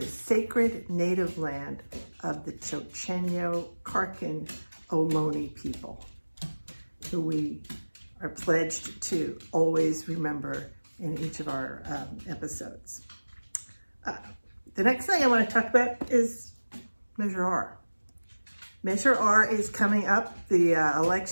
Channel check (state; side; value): inverted; both; correlation -1.00